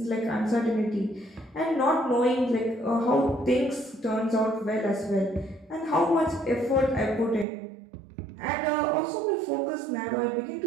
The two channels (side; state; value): left; drops out; at 7.5 s